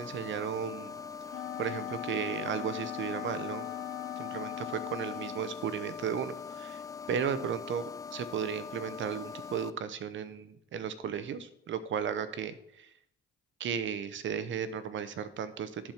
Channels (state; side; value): quieter; left; 4.2 dB